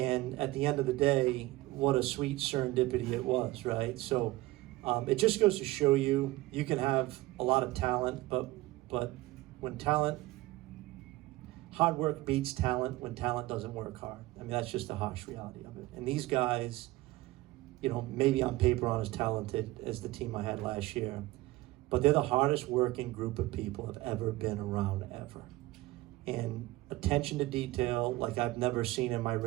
at the end of the day, what a sweet serendipity it was, right? So it just goes to show you can have a lot of talent, but when hard work beats talent when talent doesn't work hard. I mean, that's just the harsh reality of it. And these guys, maybe on paper aren't as talented as the team I had last year, but they're the hardest working group of people I've ever been around, ever. And attention to detail like I've never seen in my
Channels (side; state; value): left; quieter; 18.9 dB